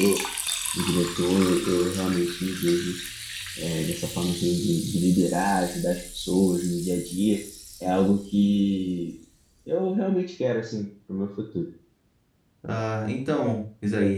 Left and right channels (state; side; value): identical; both; correlation 1.00